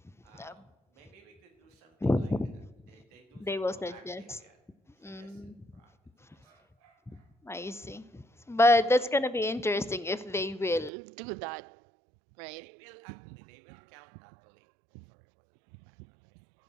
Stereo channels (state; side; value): drops out; left; at 10.9 s